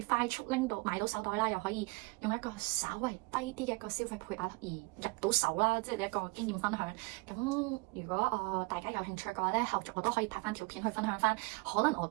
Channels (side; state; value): left; quieter; 27.2 dB